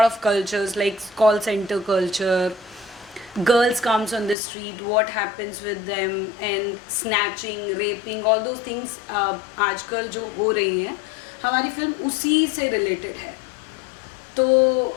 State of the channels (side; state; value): right; drops out; at 4.4 s